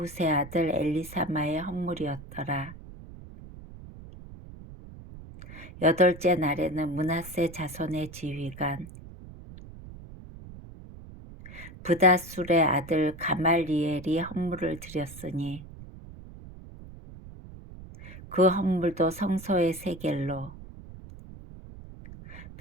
아들 엘리사마의 헌물이었더라. 8째 날에는 므낫세 자손의 지휘관 브다술의 아들 가말리엘이 헌물을 드렸으니 그 헌물도 성소의 세겔로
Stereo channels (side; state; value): right; noise; rumble, 16 dB below the sound